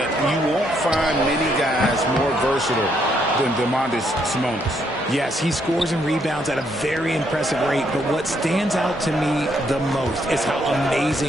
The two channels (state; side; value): normal; both; correlation 0.73